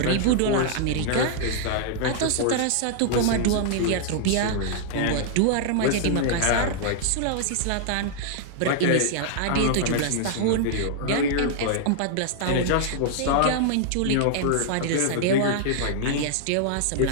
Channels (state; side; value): different; both; correlation -0.01